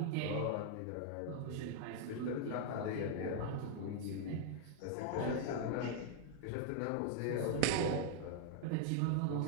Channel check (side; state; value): both; different; correlation 0.00